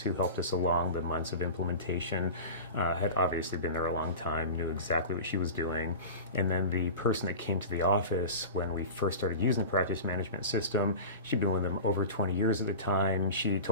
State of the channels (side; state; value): both; inverted; correlation -0.31